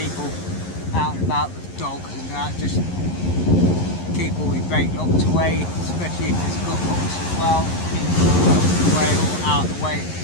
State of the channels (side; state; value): right; late; 11 ms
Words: out and about with dogs and that, just keep all your bait locked away, especially if it's got hooks as well, keep them locked away or out of the way,